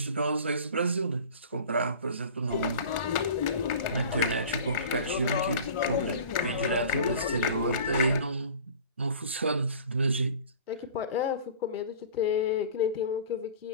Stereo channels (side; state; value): both; inverted; correlation -0.41